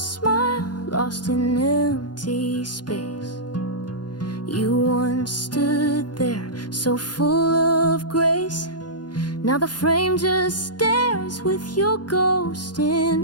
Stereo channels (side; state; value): right; late; 0.70 ms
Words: lost in empty space. You once stood there so full of grace. Now the frame just stares with your ghost